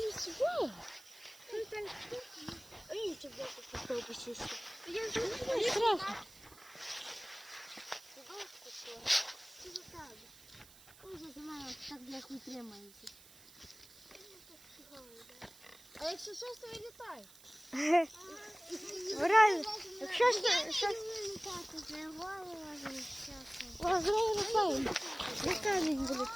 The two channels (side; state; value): right; noise; hiss, 22 dB below the sound